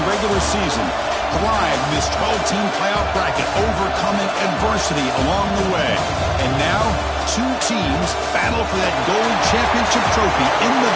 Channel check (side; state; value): both; identical; correlation 1.00